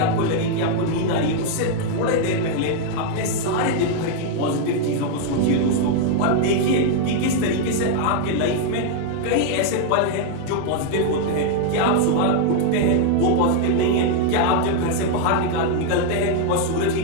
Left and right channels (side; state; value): both; different; correlation 0.00